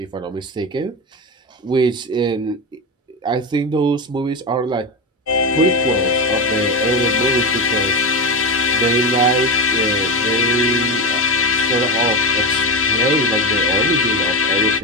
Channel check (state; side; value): normal; both; correlation 0.16